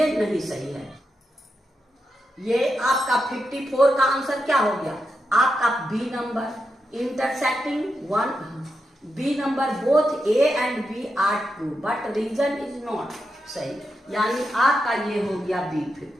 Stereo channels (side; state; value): both; normal; correlation 0.86